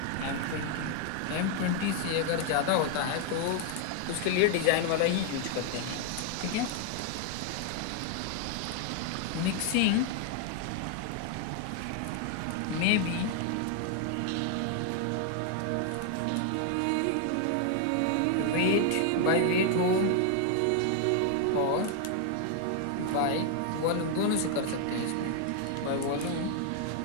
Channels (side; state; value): both; different; correlation 0.00